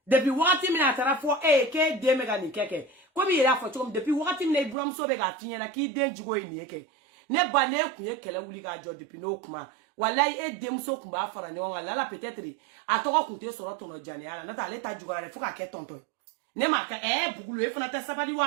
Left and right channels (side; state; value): left; drops out; at 4.8 s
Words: depuis wakati mina tara fo ke de mega ni keke ko bi ira fo chom depuis wakati mina ibram so be ga finya na ki de jugo ni eke ne ba ne kun ye kele wuli ga jo depuis no kuma wallahi dem so kumba fara ne wala la peut-être atoko kunte soro tono jane ala na ta leta jugora le fuka ke tonto ne ma ka bugulu e fana ta sabadi